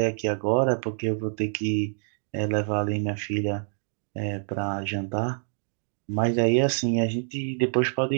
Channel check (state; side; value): silent; left; digital silence